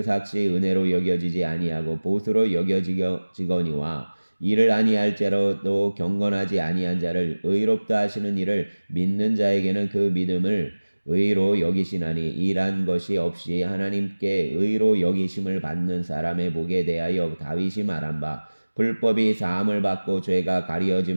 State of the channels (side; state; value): both; inverted; correlation -1.00